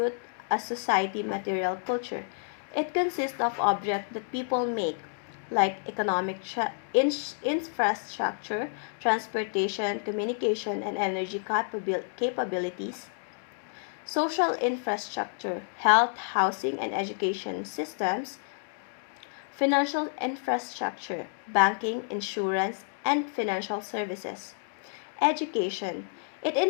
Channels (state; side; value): silent; right; digital silence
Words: a society material culture. It consists of objects that people make, like economic infrastructure, transportation, communication, and energy capabilities, social infrastructure, health, housing, and education systems, financial infrastructure, banking, insurance, and financial services. Education. It